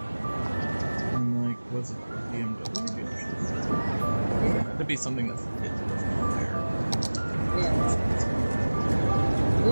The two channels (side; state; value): both; inverted; correlation -1.00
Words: And like, was it BMW dealership? That'd be something that's there. Yeah.